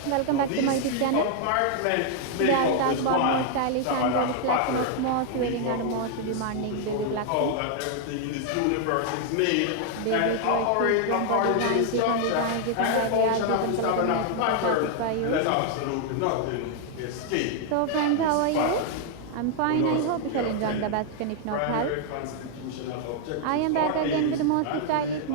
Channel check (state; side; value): different; both; correlation 0.00